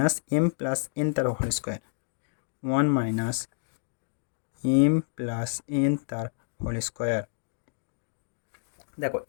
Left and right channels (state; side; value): silent; right; digital silence